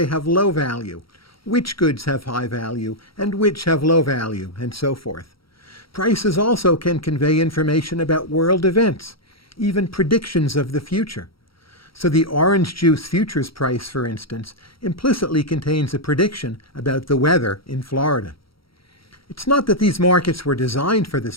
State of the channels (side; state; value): right; late; 0.75 ms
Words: have low value, which goods have high value and which have low value, and so forth. Prices also can convey information about world events, even predictions of the future. So the orange juice futures price, for instance, implicitly contains a prediction about the weather in Florida. It's not that these markets were designed for this